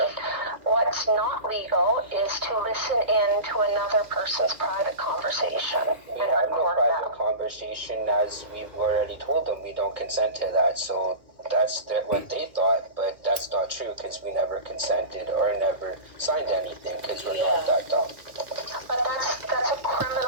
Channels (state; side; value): late; left; 2.1 ms